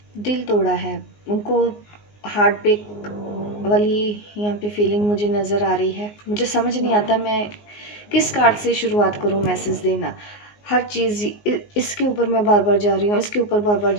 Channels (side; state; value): right; late; 19 ms